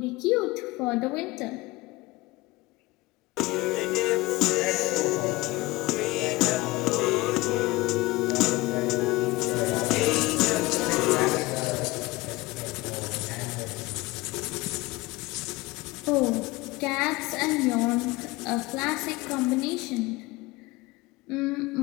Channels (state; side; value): quieter; right; 20.8 dB